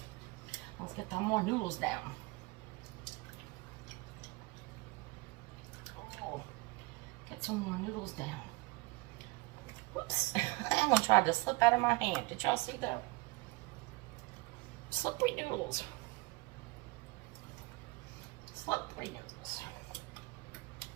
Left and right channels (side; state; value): left; quieter; 23.8 dB